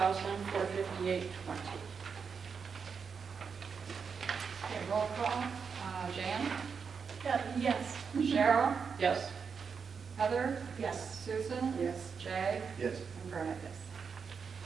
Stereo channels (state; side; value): quieter; left; 6.0 dB